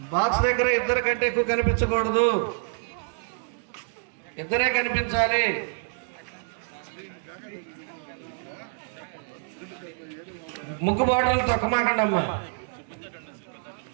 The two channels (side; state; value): left; silent; digital silence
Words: బాక్స్ దగ్గర ఇద్దరు కంటే ఎక్కువ కనిపించకూడదు, ఇద్దరే కనిపించాలి. ముగ్గు బాటలు తొక్కమాకండి అమ్మా,